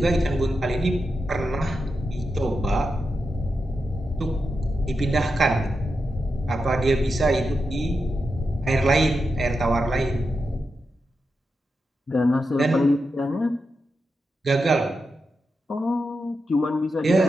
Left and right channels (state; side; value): normal; both; correlation 0.88